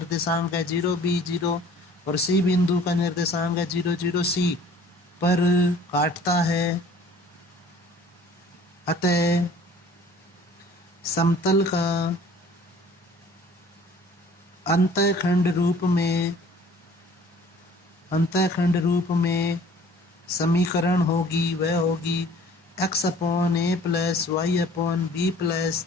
है 0 B0 और C बिंदु का निर्देशांक है 0 0 C पर काटता है। अतः समतल का अंतःखंड रूप में समीकरण होगी, वह होगी x upon a plus Y upon B plus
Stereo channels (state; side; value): normal; both; correlation 0.51